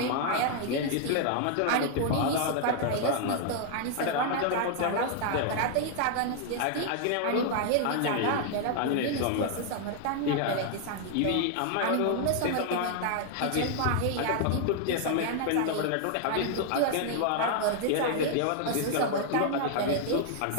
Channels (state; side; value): different; both; correlation 0.00